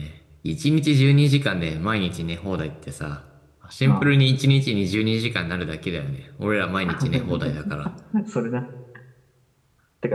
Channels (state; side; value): identical; both; correlation 1.00